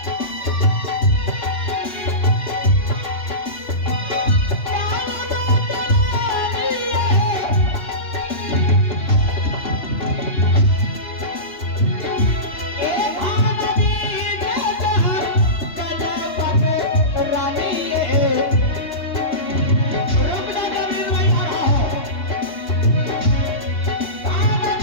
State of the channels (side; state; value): right; late; 3.5 ms